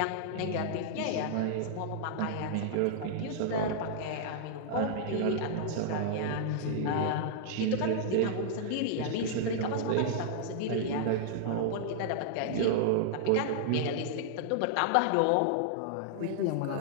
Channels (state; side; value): different; both; correlation -0.01